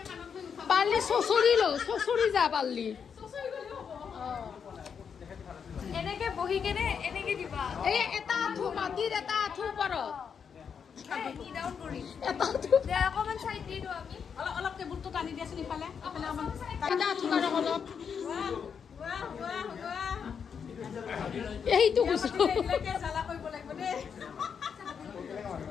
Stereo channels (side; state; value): right; quieter; 6.8 dB